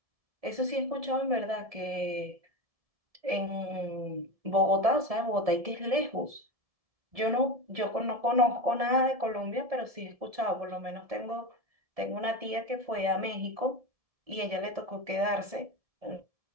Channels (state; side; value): late; left; 1.7 ms